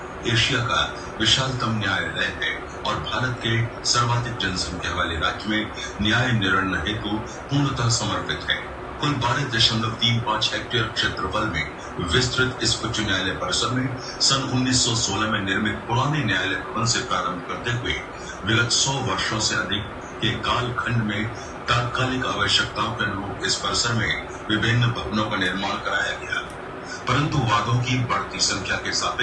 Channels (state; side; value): identical; both; correlation 1.00